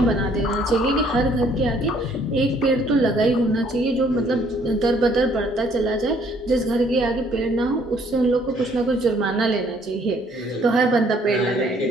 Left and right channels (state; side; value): normal; both; correlation 0.63